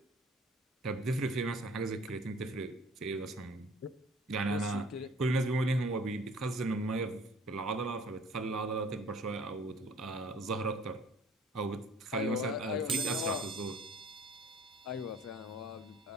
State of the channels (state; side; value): normal; both; correlation 0.52